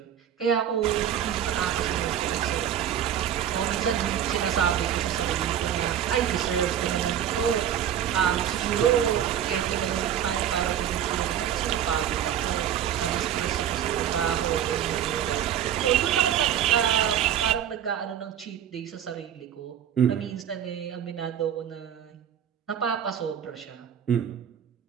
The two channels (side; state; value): left; quieter; 9.8 dB